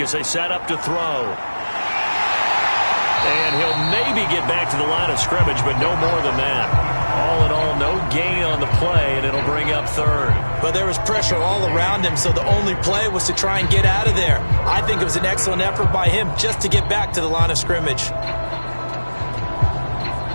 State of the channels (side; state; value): both; inverted; correlation -1.00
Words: as they set up to throw. And he'll maybe get back to the line of scrimmage, but no more than that. All in all, no gain on the play, and it'll bring up 3rd. But there was pressure all around him, so the only play was to try and get out of there. I think it was an excellent effort by him just to get back to the line of scrimmage.